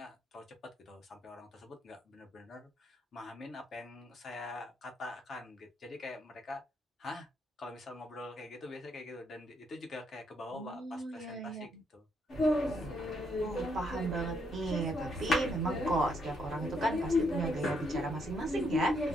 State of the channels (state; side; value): normal; both; correlation 0.74